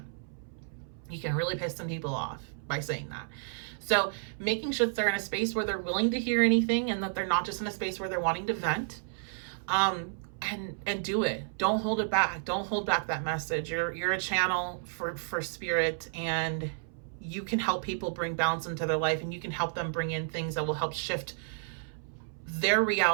You can really piss some people off by saying that. So making sure that they're in a space where they're willing to hear anything, and that they're not just in a space where they're wanting to vent. and do it. Don't hold it back. Don't hold back that message. You're a channel for spirit, and you can help people bring balance into their life, and you can help them bring in things that will help shift their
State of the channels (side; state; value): left; silent; 57 dB below the other